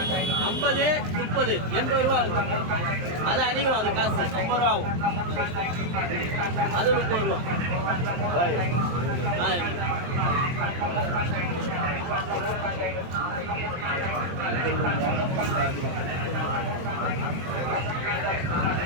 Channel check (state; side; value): late; left; 23 ms